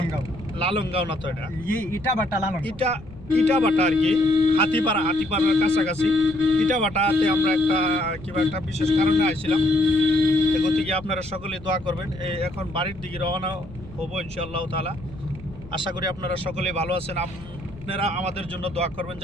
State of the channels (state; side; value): noise; left; rumble, 18 dB below the sound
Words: লালংগাঁও না তো এটা ইটাবাটা লালং ইটাবাটা আর কি হাতিপাড়ার কাছাকাছি ইটাবাটাতে আমরা একটা বিশেষ কারণে আইছিলাম। গতিকে আপনারা সকলেই দোয়া করবেন। এখন বাড়ির দিকে রওনা হবো ইনশাআল্লাহ তাআলা। আশা করি আপনারা সকলেই ভালো আছেন। আপনারা আমাদের জন্য দোয়া করবেন,